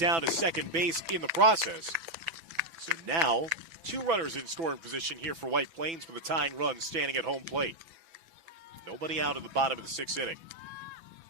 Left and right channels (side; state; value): left; late; 6.0 ms